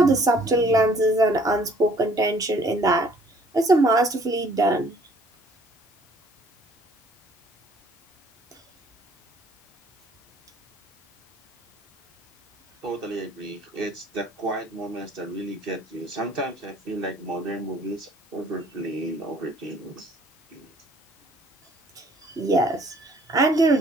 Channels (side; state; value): both; normal; correlation 0.58